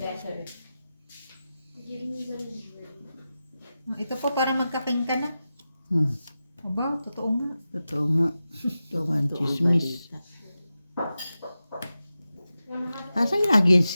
Giving you the Ito po para magkaking ka na. Aba, totoo nga. Totoo nga. Ito nga ang Ito ang chismis. balita. Asan lagi yung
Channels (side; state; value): both; inverted; correlation -0.93